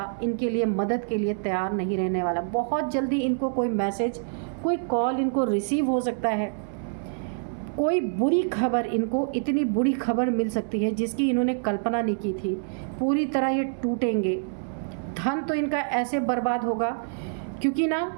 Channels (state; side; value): silent; left; digital silence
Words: इनके लिए मदद के लिए तैयार नहीं रहने वाला। बहुत जल्दी इनको कोई मैसेज, कोई कॉल इनको रिसीव हो सकता है। कोई बुरी खबर, इनको इतनी बुरी खबर मिल सकती है जिसकी इन्होंने कल्पना नहीं की थी। पूरी तरह ये टूटेंगे। धन तो इनका ऐसे बर्बाद होगा, क्योंकि